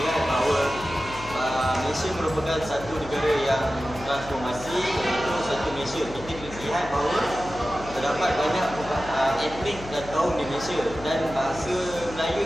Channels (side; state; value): left; noise; hum, 15 dB below the sound